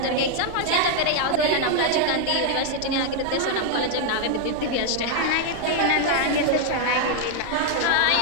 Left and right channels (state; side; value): different; both; correlation 0.00